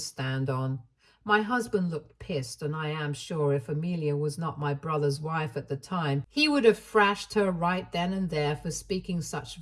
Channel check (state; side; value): identical; both; correlation 1.00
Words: on. My husband looked pissed, and I am sure if Amelia was not my brother's wife at the time, he would have thrashed her right then and there for speaking such